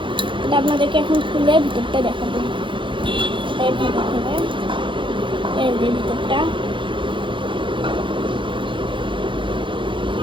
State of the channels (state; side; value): late; left; 0.24 ms